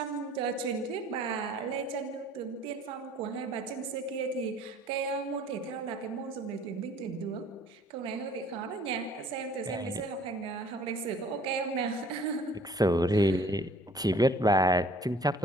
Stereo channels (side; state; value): both; normal; correlation 0.54